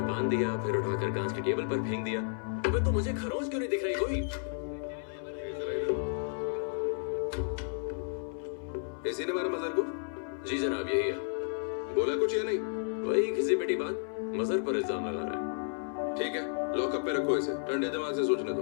बांध दिया, फिर उठाकर कांच की टेबल पर फेंक दिया। अबे तो मुझे खरोंच क्यों नहीं दिख रही कोई? इसी ने मारा मजहर को? जी जनाब, यही है। बोला कुछ या नहीं? वही घिसी पिटी बात, मजहर पर इल्जाम लगा रहा है। ठीक है, लॉकअप पे रखो इसे, ठंडे दिमाग से सोचने दो,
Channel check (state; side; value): silent; right; 56 dB below the other